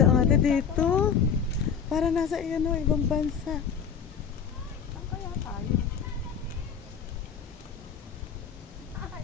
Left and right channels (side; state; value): right; quieter; 6.9 dB